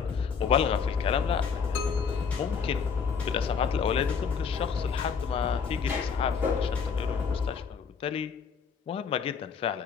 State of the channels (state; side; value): quieter; right; 6.2 dB